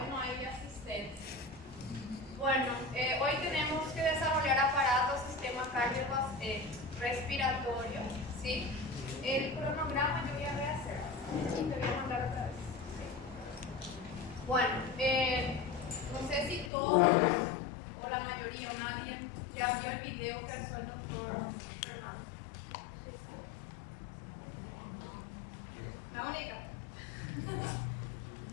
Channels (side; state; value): right; drops out; at 16.7 s